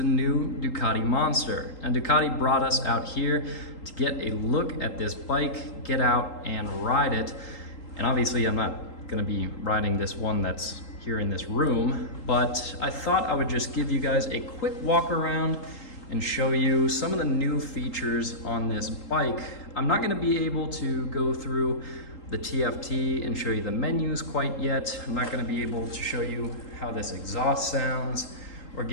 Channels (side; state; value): right; late; 3.8 ms